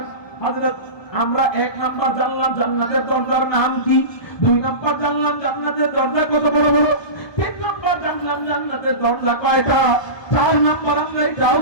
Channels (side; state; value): right; late; 1.2 ms